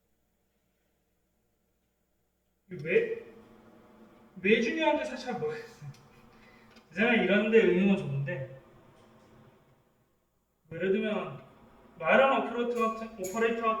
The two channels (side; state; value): both; identical; correlation 1.00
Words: 왜 중요한지 사실 잘 모르겠어요. 제가 이런 데 응용은 좋은데, 예를 들면 마이런 오퍼레이터